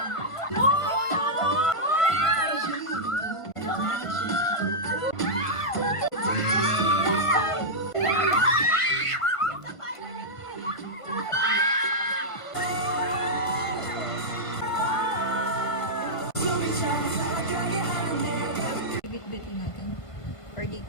Bit-bitin natin. Or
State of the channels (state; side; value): late; right; 1.5 ms